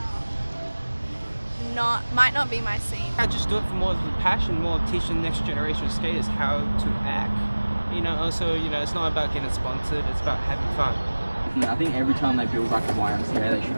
might not be my scene. I just do it for more of the passion, more teaching the next generation of skaters how to act. Also, it's not about getting sponsored, it's about having fun. I think every time they build a YMCA, they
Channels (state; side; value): inverted; both; correlation -1.00